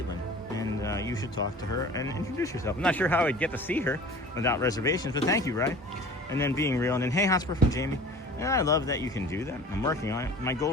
And you should talk to her and introduce yourself. I'm not sure how I'd get to see her without reservations, but thank you, right? And then being real. And then, hey, Hotspur from Jamie. And I love that you can do that. I'm working on it. My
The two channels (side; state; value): both; normal; correlation 0.43